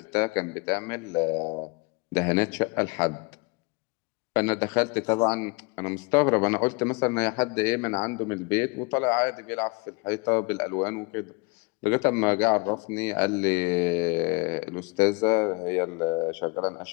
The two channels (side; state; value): right; quieter; 28.8 dB